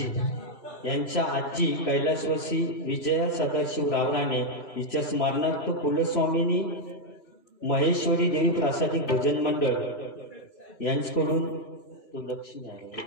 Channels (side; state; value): right; late; 3.0 ms